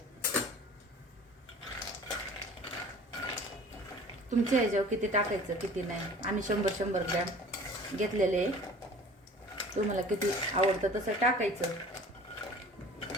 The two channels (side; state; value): both; normal; correlation 0.45